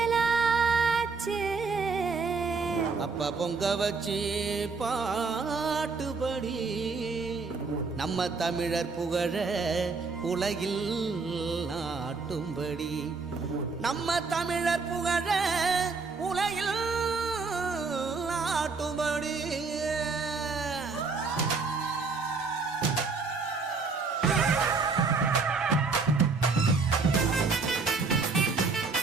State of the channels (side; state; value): left; quieter; 4.4 dB